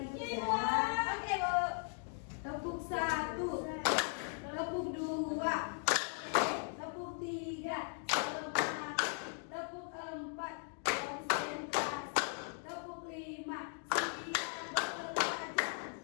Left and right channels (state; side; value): silent; right; 52 dB below the other